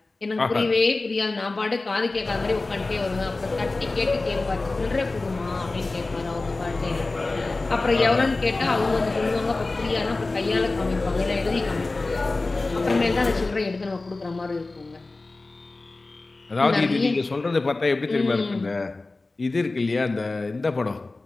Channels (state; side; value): quieter; right; 3.3 dB